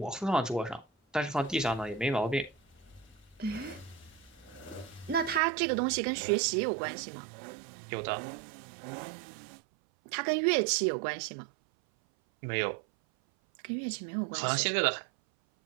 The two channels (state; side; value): drops out; left; at 5.4 s